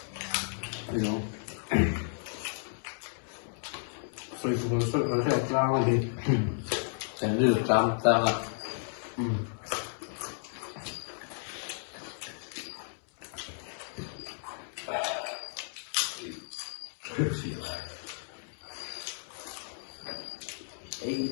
hiểu rồi cũng nó sẽ ra ngoài đi cái được trăm ta là ấy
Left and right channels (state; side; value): silent; right; digital silence